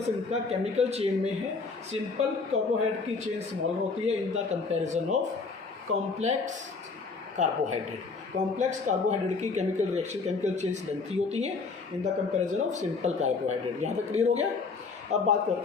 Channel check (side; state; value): right; quieter; 4.4 dB